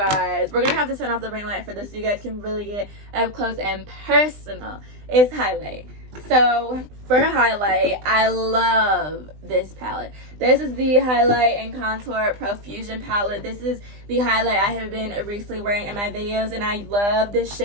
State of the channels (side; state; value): left; late; 20 ms